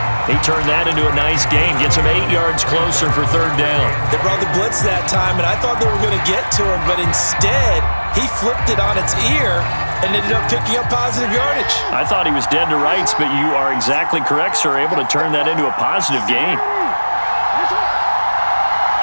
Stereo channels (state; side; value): inverted; both; correlation -1.00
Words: He turned that into a nice gain, gets him 8 yards closer for 3rd down. They brought the blitz that time, and I thought they were going to get to him, but instead, he flipped it on its ear and ended up picking up positive yardage. I thought he was dead to rights, but you are exactly correct, sir, able to turn that into a positive gain.